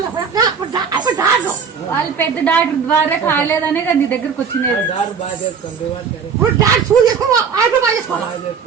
వాళ్ళు పెద్ద డాక్టర్ ద్వారా కాలేదనే కదా నీ దగ్గరకు వచ్చినది.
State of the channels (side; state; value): left; quieter; 6.2 dB